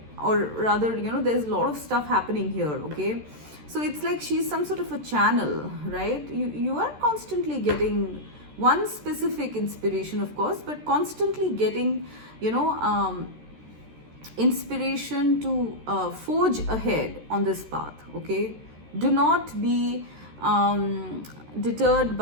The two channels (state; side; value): late; left; 13 ms